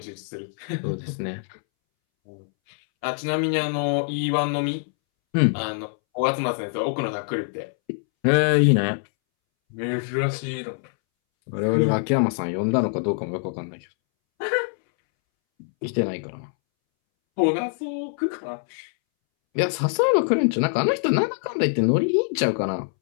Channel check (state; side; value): silent; right; 62 dB below the other